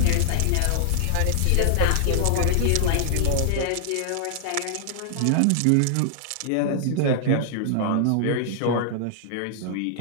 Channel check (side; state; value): both; different; correlation -0.01